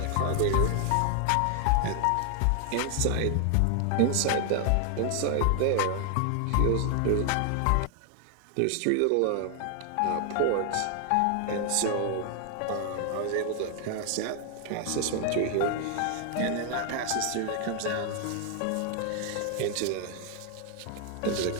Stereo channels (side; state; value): both; different; correlation 0.00